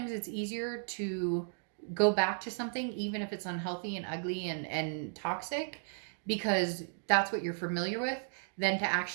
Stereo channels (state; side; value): silent; left; digital silence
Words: it's easier to go back to something, even if it's unhealthy and ugly and toxic, because that's what you're familiar with, than to